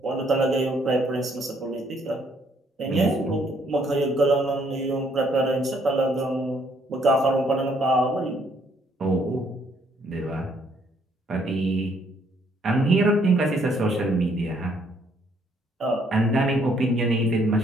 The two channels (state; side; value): normal; both; correlation 0.67